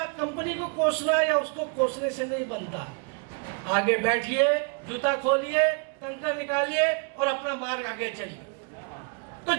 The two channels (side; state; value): left; quieter; 37.8 dB